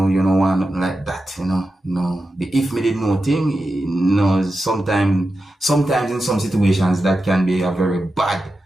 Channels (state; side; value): normal; both; correlation 0.91